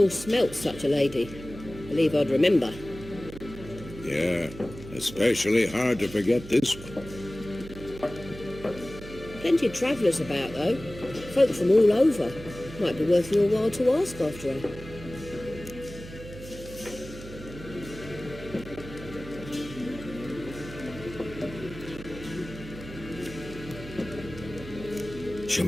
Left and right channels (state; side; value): noise; right; hum, 14 dB below the sound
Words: smelt such a lady. Believe I'd remember. Yeah, especially hard to forget this one. Plenty of travellers about, though. Folk from all over. Might be worth your while to ask after her. Show